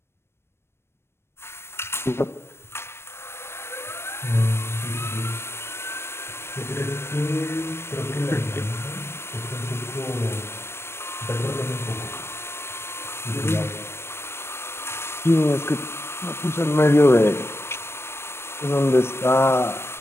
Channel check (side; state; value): right; late; 0.12 ms